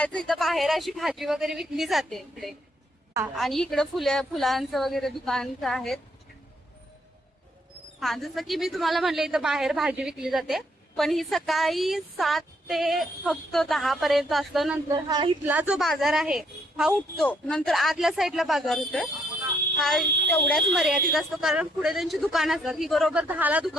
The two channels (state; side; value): normal; both; correlation 0.71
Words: इथं बाहेर अशी भाजी वगैरे विकली जाते इकडे. आणि इकडे फुलांचं वगैरे दुकानचं आहेत. हा, जसं की मी तुम्हाला म्हणले इथं बाहेर भाजी विकली जाते, पण ही सकाळी 7 ते फक्त 10 पर्यंत असतं. नंतर हा इथला जो बाजार आहे हा उठतो. नंतर आतल्या साईडला बाजार होतोय, हा तेवढ्याच मर्यादित असतो, कारण पुढे त्यांची दुकानं असतात. ही बरोबर 10ला